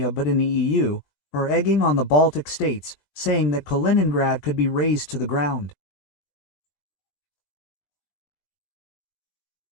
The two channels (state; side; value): late; right; 20 ms